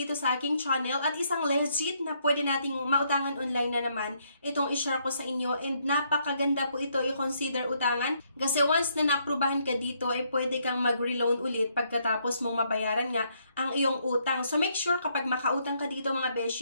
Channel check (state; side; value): inverted; both; correlation -0.73